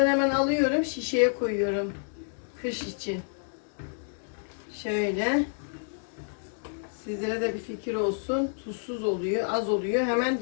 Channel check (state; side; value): silent; right; digital silence